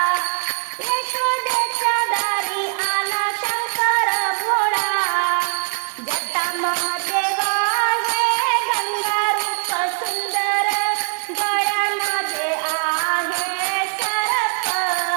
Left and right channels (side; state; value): left; silent; 60 dB below the other